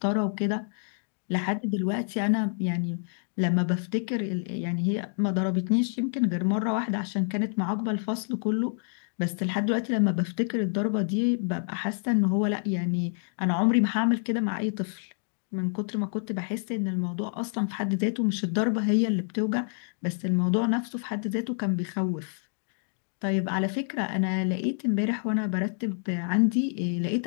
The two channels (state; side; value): silent; right; digital silence